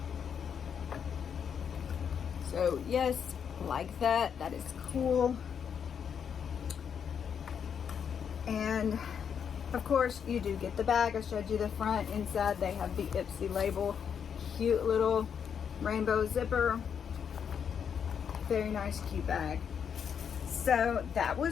So yes, like that. That is cool. And of course you do get the bag. I showed you the front. Inside they have the Ipsy label. Cute little rainbow zipper. Very nice, cute bag. So that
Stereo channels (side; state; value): right; quieter; 7.5 dB